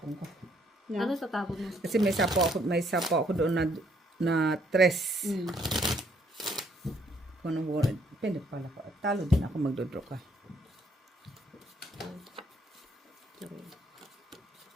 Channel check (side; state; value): both; normal; correlation 0.68